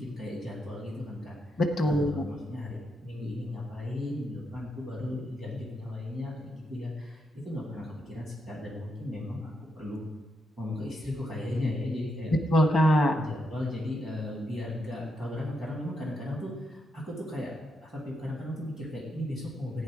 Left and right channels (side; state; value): both; normal; correlation 0.81